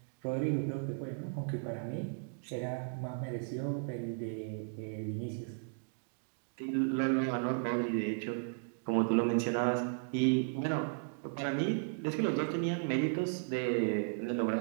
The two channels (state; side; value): silent; left; digital silence